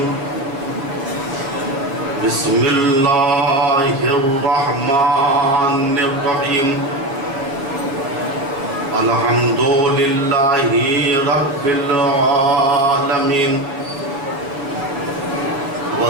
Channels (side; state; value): left; late; 7.2 ms